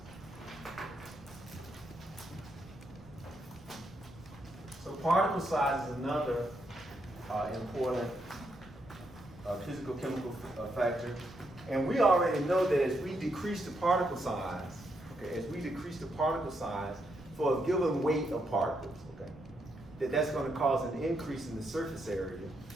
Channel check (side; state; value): right; noise; rumble, 21 dB below the sound